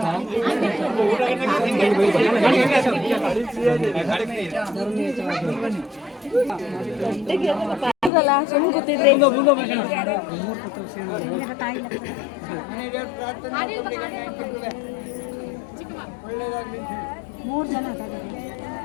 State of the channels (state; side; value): drops out; right; at 8.1 s